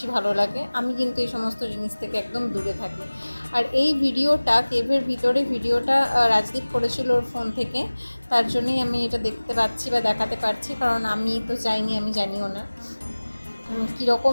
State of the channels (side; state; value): both; inverted; correlation -1.00